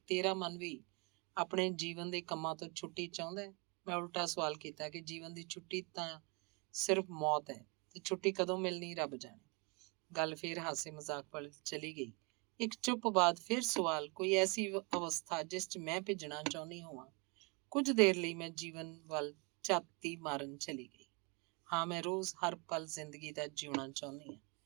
ਤੇਰਾ ਮਨ ਵੀ ਆਪਣੇ ਜੀਵਨ ਦੇ ਕੰਮਾਂ ਤੋਂ ਛੁੱਟੀ ਚਾਹੁੰਦਾ ਹੈ? ਮੈਂ ਉਲਟਾ ਸਵਾਲ ਕੀਤਾ ਕਿ ਜੀਵਨ ਦੀ ਛੁੱਟੀ ਤਾਂ ਸਿਰਫ ਮੌਤ ਹੈ, ਤੇ ਛੁੱਟੀ ਕਦੋਂ ਮਿਲਣੀ ਰੱਬ ਜਾਣੇ। ਗੱਲ ਫਿਰ ਹਾਸੇ ਮਜ਼ਾਕ ਵੱਲ ਚਲੀ ਗਈ। ਇੱਕ ਚੁੱਪ ਬਾਅਦ ਫਿਰ ਸਵਾਲ, ਕੋਈ ਐਸੀ ਅਵਸਥਾ ਜਿਸ 'ਚ ਮੈਂ ਭਿੱਜਣਾ ਚਾਹੁੰਦੀ ਹੋਵਾਂ? ਕੁਝ ਦੇਰ ਲਈ ਮੈਂ ਜੀਵਨ ਵੱਲ ਝਾਤੀ ਮਾਰਨ ਚਲੀ ਗਈ। ਹਾਂ, ਮੈਂ ਰੋਜ਼ ਹਰ ਪਲ ਜ਼ਿੰਦਗੀ ਦਾ ਜਿਉਣਾ ਚਾਹੁੰਦੀ ਹਾਂ।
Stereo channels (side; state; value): left; quieter; 29.9 dB